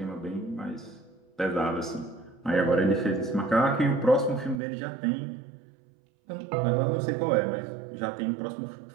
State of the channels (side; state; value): left; drops out; at 4.6 s